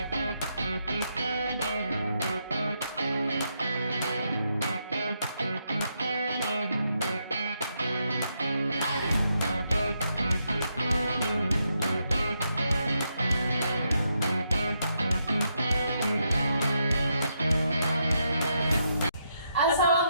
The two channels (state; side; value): inverted; both; correlation -0.80